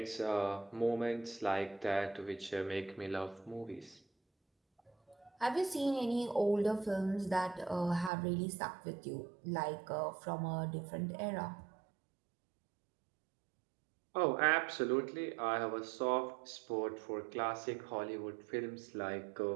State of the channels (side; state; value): left; drops out; at 8.1 s